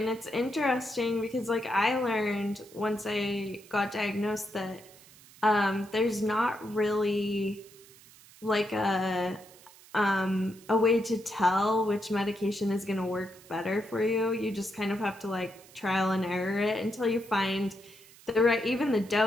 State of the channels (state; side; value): noise; right; hiss, 23 dB below the sound